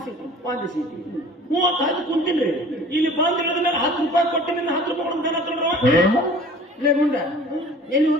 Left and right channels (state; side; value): normal; both; correlation 0.46